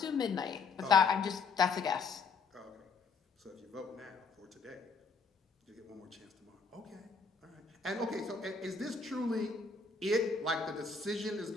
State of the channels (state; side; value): quieter; right; 4.7 dB